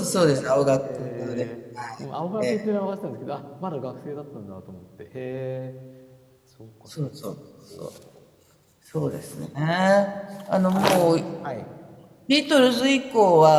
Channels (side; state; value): both; identical; correlation 1.00